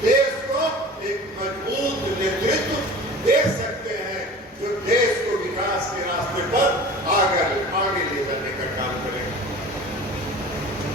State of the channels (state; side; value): normal; both; correlation 0.39